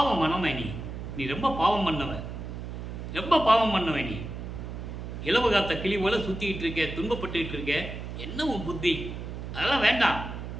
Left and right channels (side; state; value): right; noise; hum, 8 dB below the sound